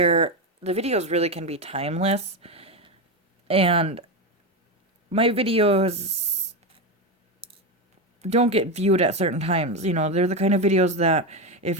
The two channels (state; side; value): normal; both; correlation 0.13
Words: the videos really can be timeless, and my videos don't get viewed at certain times. They're the kind of videos that if